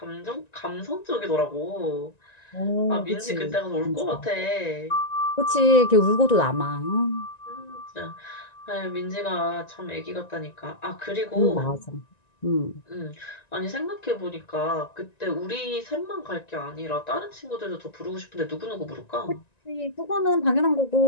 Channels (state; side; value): late; right; 1.9 ms